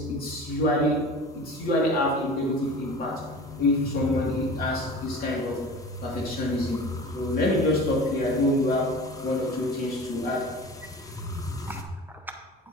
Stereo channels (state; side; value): normal; both; correlation 0.37